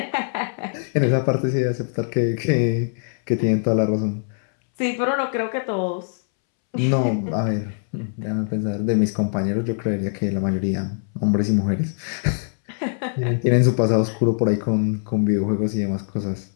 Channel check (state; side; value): silent; right; 64 dB below the other